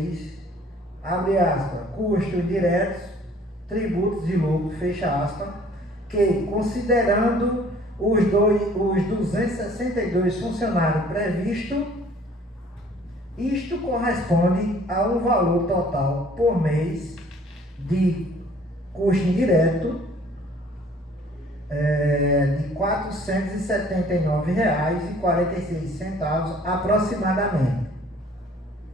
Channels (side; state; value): both; normal; correlation 0.55